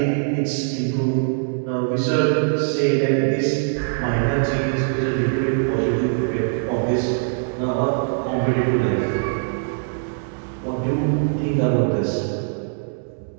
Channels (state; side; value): silent; left; 64 dB below the other